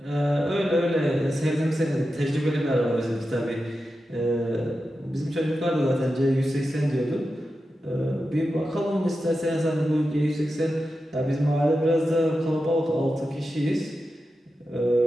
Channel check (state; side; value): normal; both; correlation 0.91